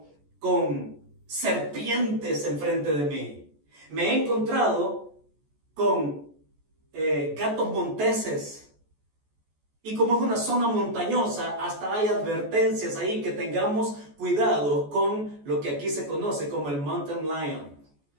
con serpientes enfrente de mí, me he encontrado con gatos monteses. Y como es una zona montañosa, hasta hay advertencias ahí que tengamos cuidado con lo que aquí se conoce como el mountain lion.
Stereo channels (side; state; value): left; late; 14 ms